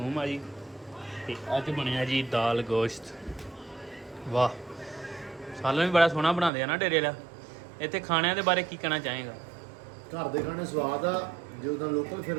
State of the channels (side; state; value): left; drops out; at 6.5 s